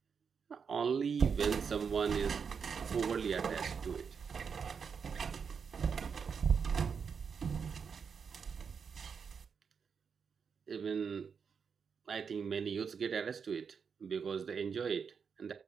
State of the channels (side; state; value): left; quieter; 6.2 dB